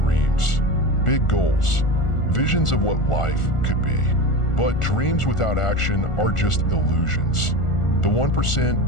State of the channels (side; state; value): right; late; 1.4 ms